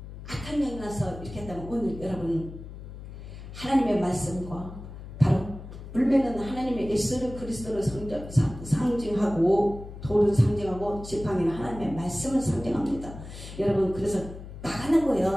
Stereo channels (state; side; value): noise; left; hum, 12 dB below the sound